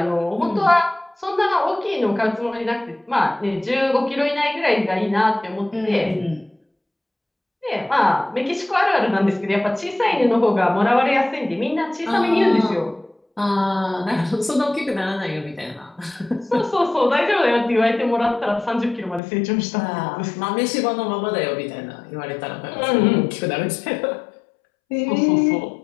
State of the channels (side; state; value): right; drops out; at 19.2 s